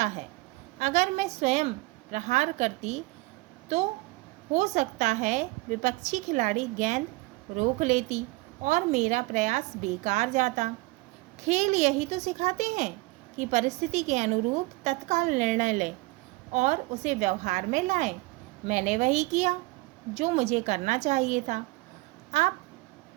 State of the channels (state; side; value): quieter; left; 22.7 dB